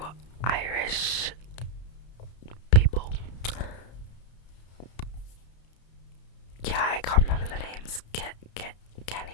Irish people. Yeah, I can't remember the names.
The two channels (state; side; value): late; right; 32 ms